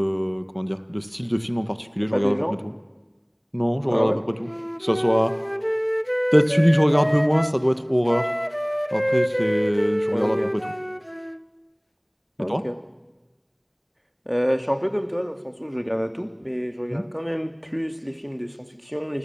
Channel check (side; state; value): both; identical; correlation 1.00